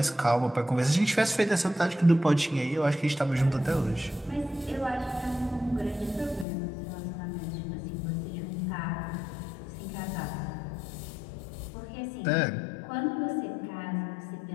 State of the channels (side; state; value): right; drops out; at 6.5 s